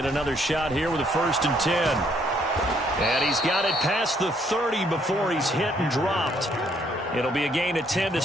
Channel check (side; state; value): both; normal; correlation 0.68